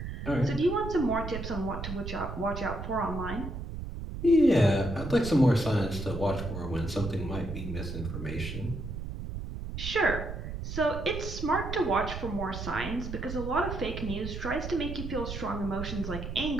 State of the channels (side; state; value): right; noise; rumble, 7 dB below the sound